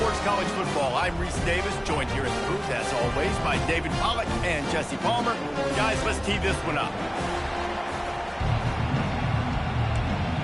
College Football, I'm Reese Davis, joined here in the booth, as always, by David Pollack and Jesse Palmer. Guys, let's tee this one up.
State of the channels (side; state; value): both; identical; correlation 1.00